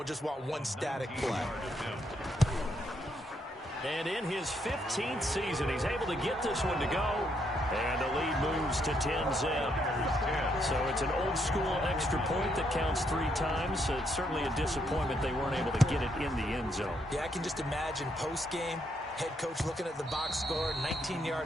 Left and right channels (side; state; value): both; normal; correlation 0.75